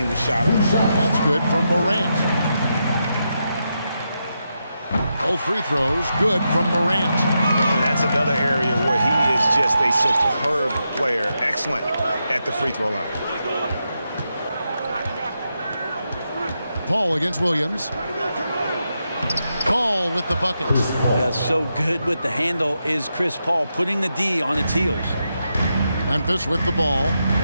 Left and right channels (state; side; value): inverted; both; correlation -0.85